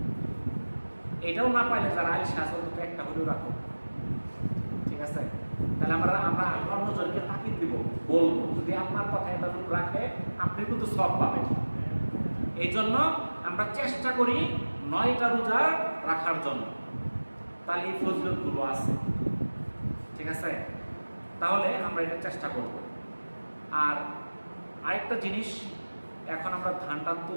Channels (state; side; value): inverted; both; correlation -1.00